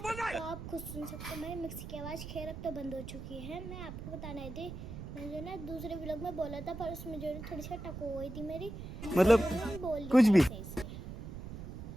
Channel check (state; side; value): noise; right; rumble, 9 dB below the sound